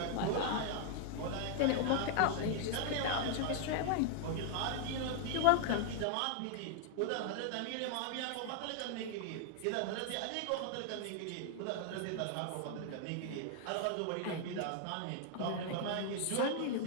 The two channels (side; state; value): both; different; correlation 0.00